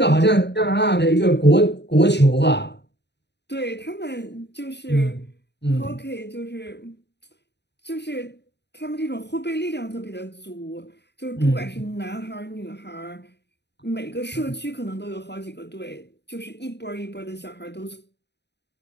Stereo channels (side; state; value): right; late; 0.50 ms